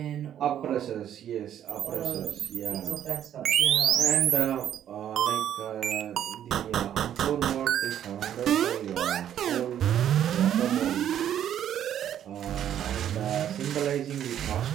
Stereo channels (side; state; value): left; quieter; 10.4 dB